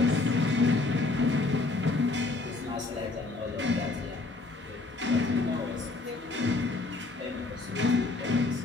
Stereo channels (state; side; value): quieter; right; 3.3 dB